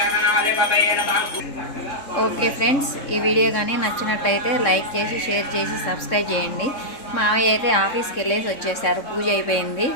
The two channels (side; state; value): right; late; 3.7 ms